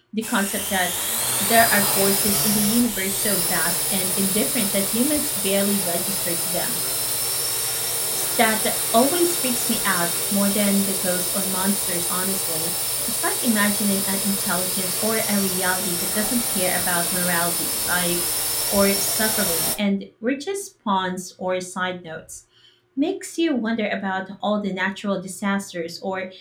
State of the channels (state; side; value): identical; both; correlation 1.00